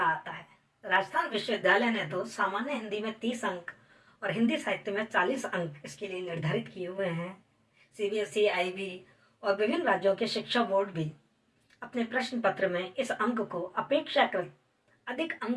आता है। राजस्थान विश्वविद्यालय ने तो सामान्य हिंदी में 30 अंक और हिंदी साहित्य में 40 अंक इसके लिए निर्धारित किए हुए हैं। CBSE, IB और विभिन्न राज्यों के शिक्षा बोर्ड भी अपने प्रश्न पत्र में इस अंक को अपेक्षाकृत अधिक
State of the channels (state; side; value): identical; both; correlation 1.00